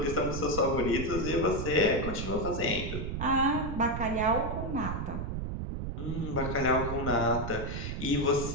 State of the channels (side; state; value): right; noise; rumble, 4 dB below the sound